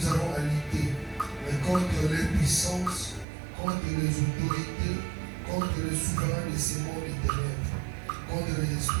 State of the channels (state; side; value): drops out; left; at 3.2 s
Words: avons à lutter, mais contre les puissances, contre les autorités, contre les souverains de ces mondes des ténèbres, contre les